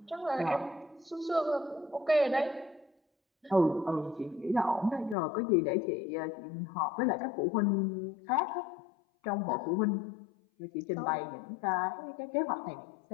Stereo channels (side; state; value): right; drops out; at 5.2 s